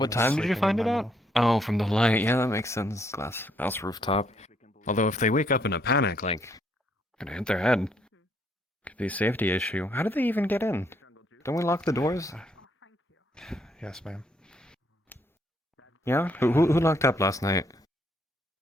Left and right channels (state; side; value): normal; both; correlation 0.71